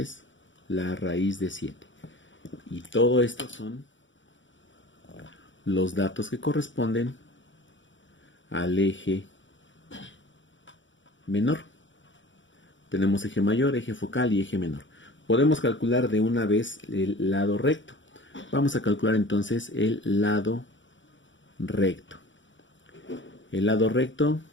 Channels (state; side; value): late; right; 0.55 ms